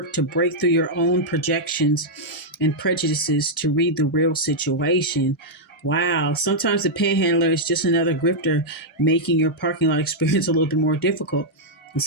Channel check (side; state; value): both; normal; correlation -0.05